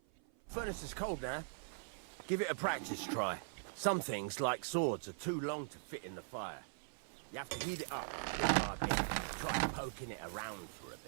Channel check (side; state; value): left; silent; 50 dB below the other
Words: Furnace is cold now. Give it a practice try. Some things, like swords, are too long to fit in the fire. You have to heat it up bit by bit. Try poking it around for a